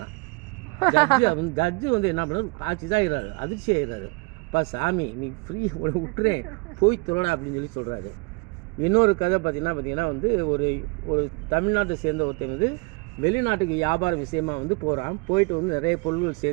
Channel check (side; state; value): left; quieter; 30.7 dB